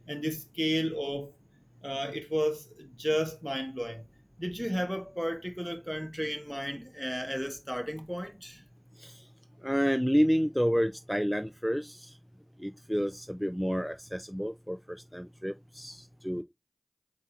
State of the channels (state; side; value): identical; both; correlation 1.00